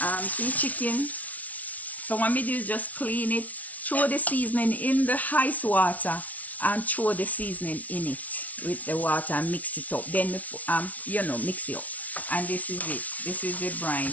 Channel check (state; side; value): late; right; 0.071 ms